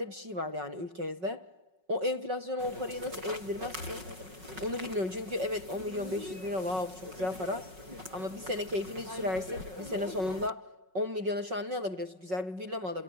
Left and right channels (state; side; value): late; left; 5.4 ms